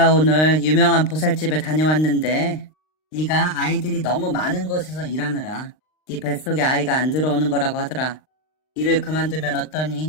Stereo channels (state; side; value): late; right; 39 ms